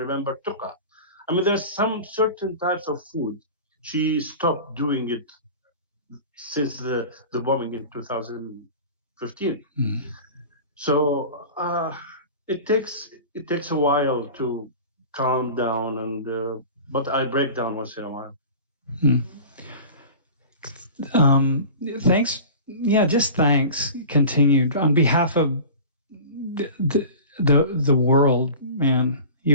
Tuqa. I mean, there's some certain types of food. She stopped doing it since the bombing in 2015. So it takes a while to calm down, and but I break down once in a while. Thanks. Yeah, just thanks. Continued on behalf of the world, man.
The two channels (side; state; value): both; inverted; correlation -0.37